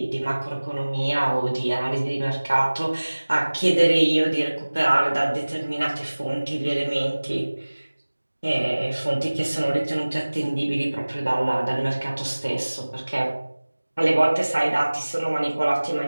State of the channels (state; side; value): inverted; both; correlation -1.00